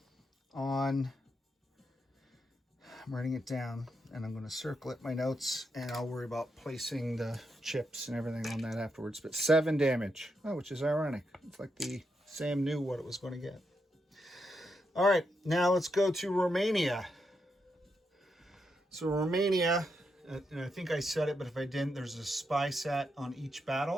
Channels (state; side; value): normal; both; correlation 0.83